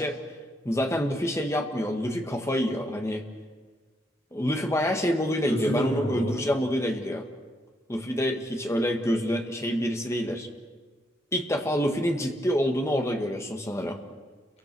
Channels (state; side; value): normal; both; correlation 0.76